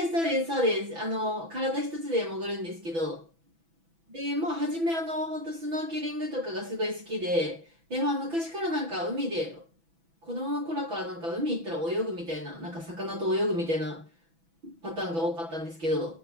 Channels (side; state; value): left; late; 6.1 ms